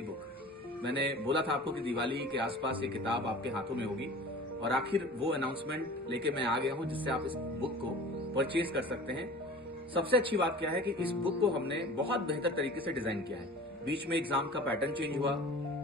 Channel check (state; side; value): normal; both; correlation 0.40